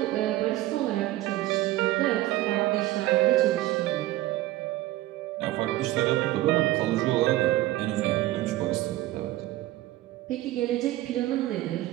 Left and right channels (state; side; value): quieter; left; 16.2 dB